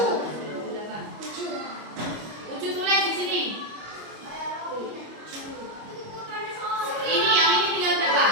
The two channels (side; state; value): left; late; 25 ms